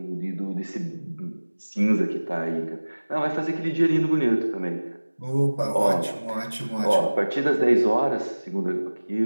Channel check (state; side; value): inverted; both; correlation -1.00